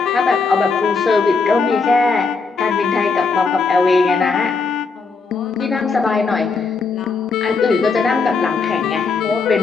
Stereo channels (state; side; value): quieter; right; 4.6 dB